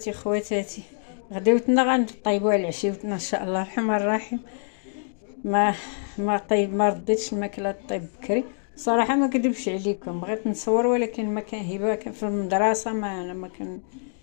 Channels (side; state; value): right; silent; digital silence